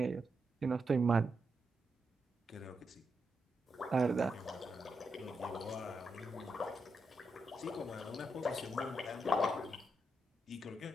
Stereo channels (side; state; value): both; normal; correlation 0.84